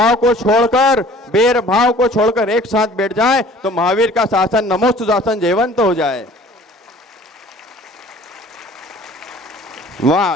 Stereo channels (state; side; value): normal; both; correlation 0.50